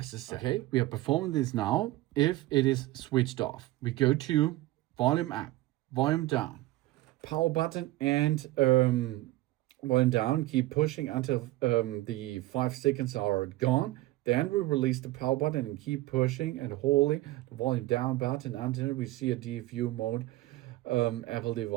Okay, we are performing this now. If it is switched off, we go to volume up, volume down, power button, and volume down. Keep pushing until the 5 seconds are gone. Then we release the power button and keep pushing and holding the volume down button until we see a DFU mode Apple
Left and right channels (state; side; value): quieter; left; 17.7 dB